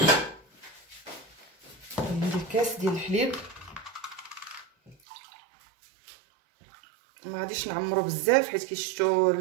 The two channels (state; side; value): drops out; left; at 5.0 s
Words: غادي ندير كاس ديال الحليب. ما غاديش نعمرو بزاف حيت كي شفتوا